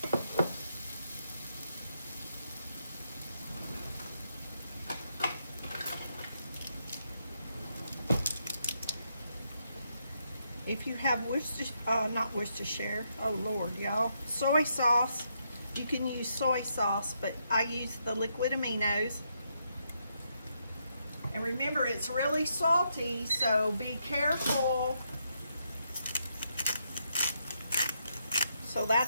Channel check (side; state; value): both; inverted; correlation -0.79